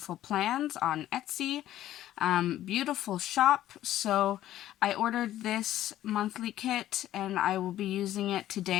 Plans on Etsy. Beautiful shop. So I ordered this monthly kit and I will be using it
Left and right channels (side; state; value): right; quieter; 13.2 dB